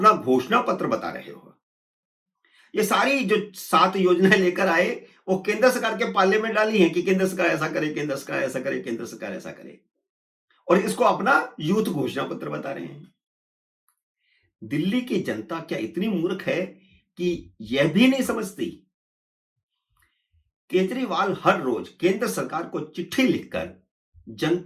घोषणा पत्र बता रहे हो। ये सारी जो 7 योजनाएं लेकर आए, वो केंद्र सरकार के पाले में डाली हैं कि केंद्र सरकार ऐसा करे, केंद्र सरकार ऐसा करे, केंद्र सरकार ऐसा करे, और इसको अपना यूथ घोषणा पत्र बता रहे हैं। दिल्ली की जनता क्या इतनी मूर्ख है कि यह भी नहीं समझती? केजरीवाल हर रोज केंद्र सरकार को चिट्ठी लिखकर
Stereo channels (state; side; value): identical; both; correlation 1.00